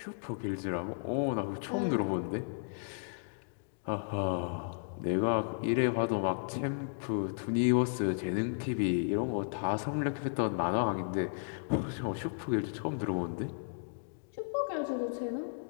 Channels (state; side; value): silent; right; digital silence